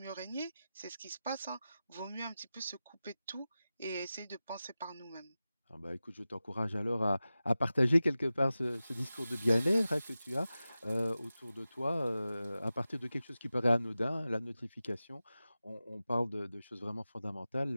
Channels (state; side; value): inverted; both; correlation -0.95